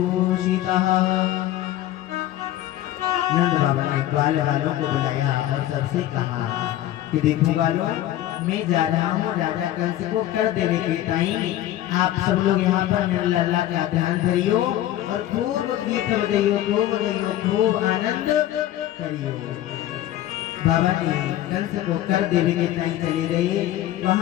नंद बाबा ने ग्वाल वालों को बुलाया और सबसे कहा कि देखो वालों, मैं जा रहा हूँ राजा कंस को कर देने के टाइम। आप सब लोग यहाँ पर मेरे लल्ला का ध्यान धरियो और खूब गीत बजाइयो, खूब गाइयो, खूब आनंद करियो। बाबा ने कंस को कर देने के टाइम चले गए।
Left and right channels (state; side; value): quieter; right; 13.4 dB